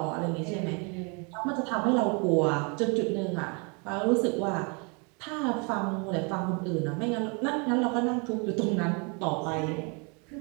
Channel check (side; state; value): left; quieter; 33.6 dB